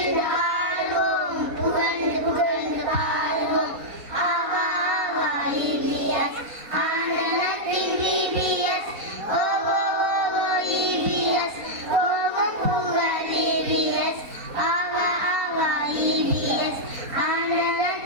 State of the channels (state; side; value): late; left; 4.2 ms